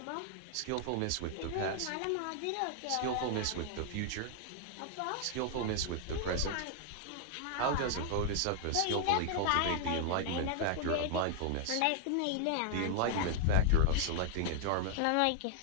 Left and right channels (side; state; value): both; different; correlation 0.00